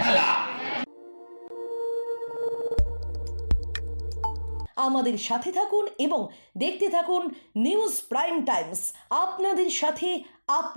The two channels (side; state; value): both; inverted; correlation -1.00